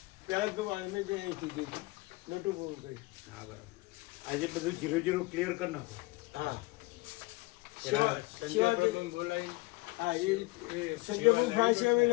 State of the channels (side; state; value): right; quieter; 22.9 dB